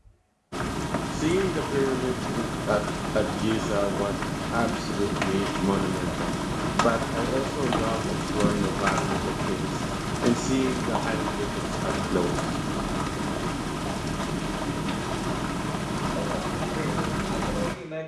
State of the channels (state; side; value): identical; both; correlation 1.00